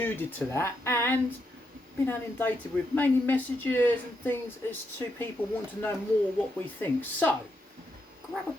to that and been inundated with mainly messages and things as to people want to know more what we think. So grab a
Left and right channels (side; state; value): both; normal; correlation 0.81